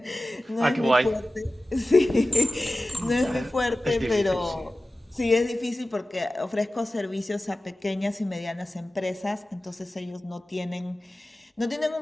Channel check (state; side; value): normal; both; correlation 0.96